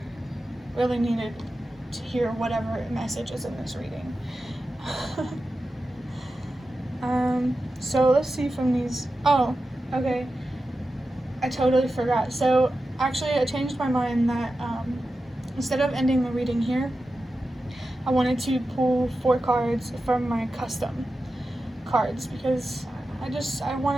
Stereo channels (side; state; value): both; normal; correlation 0.92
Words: really needed to hear whatever message is in this reading. So let's see from these. Oh, okay. I totally forgot. So actually I changed my mind that instead of ending the reading here, I wanted to pull 4 cards from my custom cards, because I